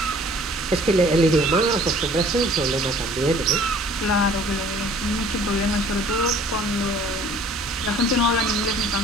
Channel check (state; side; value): normal; both; correlation 0.53